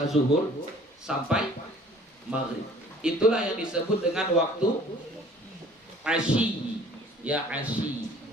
zuhur sampai maghrib. Itulah yang disebut dengan waktu asyi, ya, asyi.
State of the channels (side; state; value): both; normal; correlation 0.52